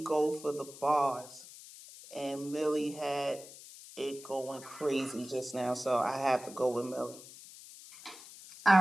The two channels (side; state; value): left; noise; hiss, 17 dB below the sound